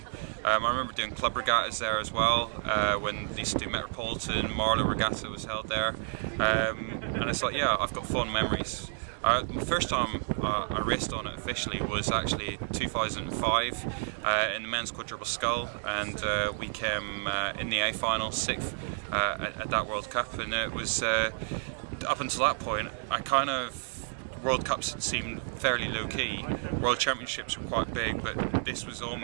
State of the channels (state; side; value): silent; left; digital silence